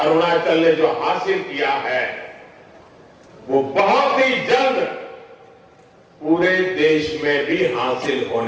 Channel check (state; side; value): identical; both; correlation 1.00